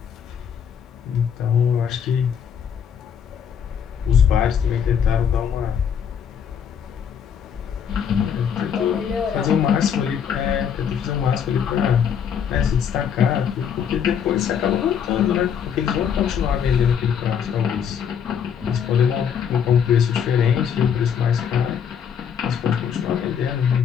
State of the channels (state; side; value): quieter; right; 7.8 dB